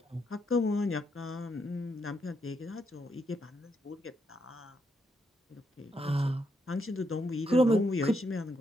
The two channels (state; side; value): normal; both; correlation 0.79